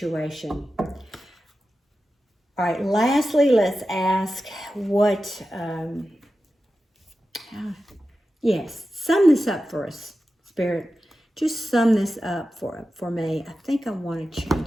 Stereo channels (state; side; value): normal; both; correlation 0.92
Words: All right, lastly, let's ask what, yes, sum this up for us, Spirit. Just sum this up for me. I think I want to